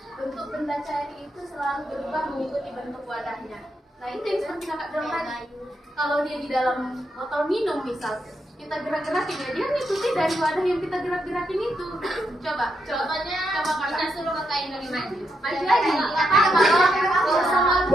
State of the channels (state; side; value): normal; both; correlation 0.81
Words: bentuk benda cair itu selalu berubah mengikuti bentuk wadahnya. Nah itu yang seperti kakak bilang tadi. Kalau dia di dalam botol minum misal, kita gerak-gerakin ya, dia ngikuti dari wadah yang kita gerak-gerakin itu. Coba Kita suruh kakak Indri maju. maju lagi.